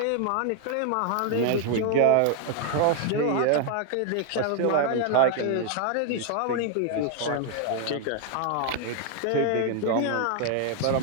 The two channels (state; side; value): different; both; correlation 0.00